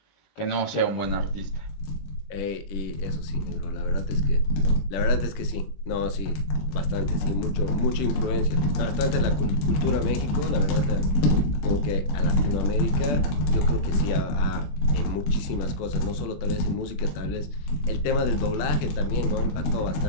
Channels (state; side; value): late; right; 21 ms